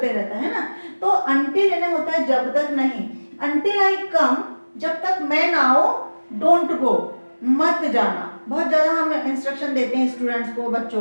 रहता है ना। तो अंटिल यानी होता है जब तक नहीं, अंटिल आई कम, जब तक मैं ना आऊं, डोंट गो, मत जाना, बहुत ज्यादा हम इंस्ट्रक्शन देते हैं स्टूडेंट्स को, बच्चों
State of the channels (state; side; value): inverted; both; correlation -1.00